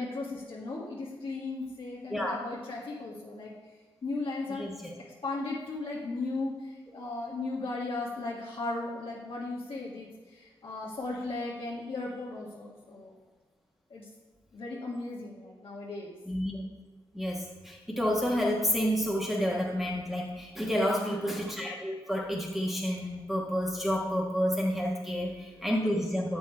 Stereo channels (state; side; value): normal; both; correlation 0.81